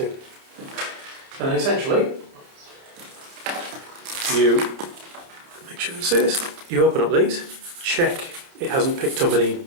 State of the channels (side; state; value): left; late; 30 ms